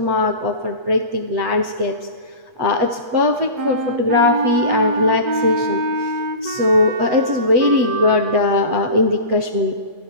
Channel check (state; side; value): late; left; 8.3 ms